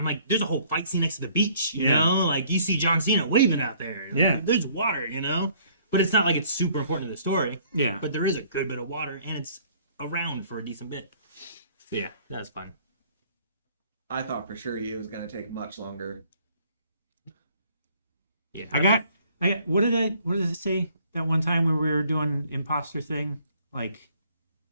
like, there's a whole fight scene next to the beach, you know? Like, you see John Cena waving out there. Yeah. There's water, you know? But it's not like it's super important to the story. Yeah. But there is a good bit of water, and it's around for a decent bit. So, yeah, that's fun. I thought for sure it was going to take much longer. Yeah. I got what did it say that one time when we were doing imposter thing, like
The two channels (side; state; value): both; inverted; correlation -0.59